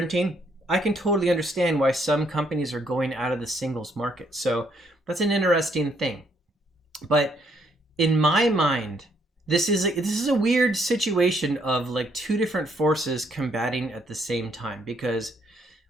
I can totally understand why some companies are going out of the singles market. So that's an interesting thing. But in my mind, this is a weird situation of two different forces combating at the same time, because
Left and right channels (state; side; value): normal; both; correlation 0.70